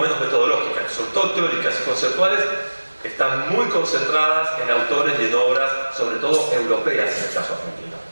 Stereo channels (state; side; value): inverted; both; correlation -1.00